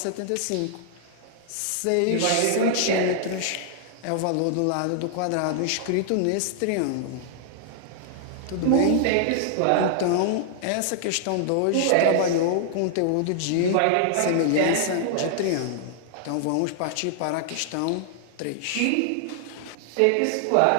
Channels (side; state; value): both; different; correlation -0.01